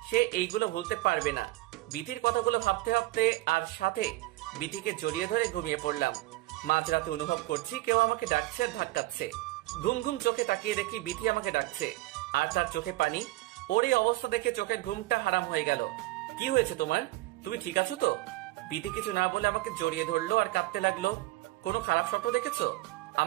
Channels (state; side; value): quieter; left; 19.3 dB